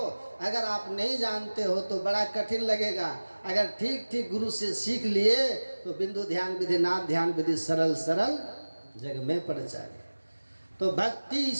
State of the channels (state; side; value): inverted; both; correlation -1.00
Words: अगर आप नहीं जानते हो तो बड़ा कठिन लगेगा। अगर ठीक ठीक गुरु से सीख लिए तो बिंदु ध्यान विधि, नाद ध्यान विधि सरल सरल जग में पड़ जाए। तो भक्ति